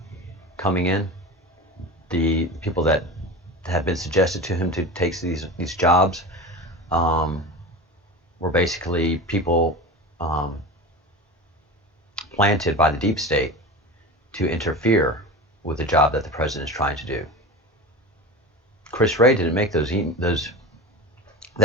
coming in, the people that have been suggested to him to take these jobs were basically people planted by the deep state to interfere with the job that the president is trying to do. Chris Wray didn't make that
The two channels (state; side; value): normal; both; correlation 0.30